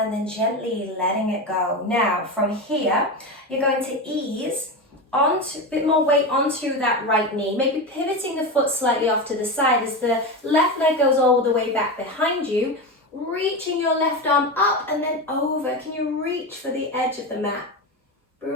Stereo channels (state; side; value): normal; both; correlation 0.20